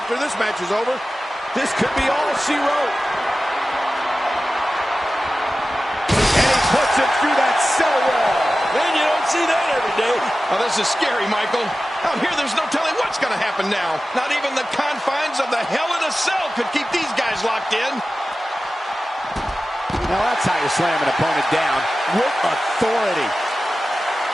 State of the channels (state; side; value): normal; both; correlation 0.95